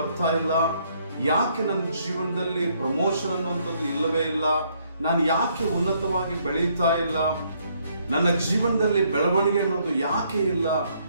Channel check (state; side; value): inverted; both; correlation -0.69